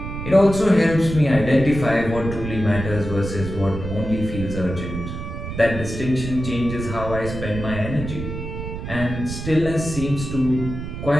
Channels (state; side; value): noise; right; rumble, 7 dB below the sound